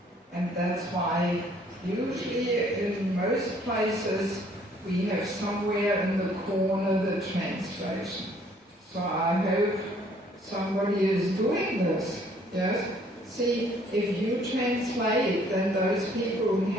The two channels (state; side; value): normal; both; correlation 0.61